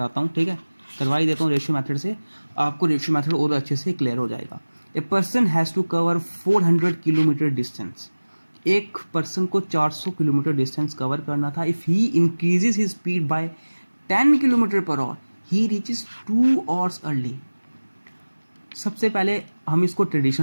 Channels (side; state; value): both; inverted; correlation -1.00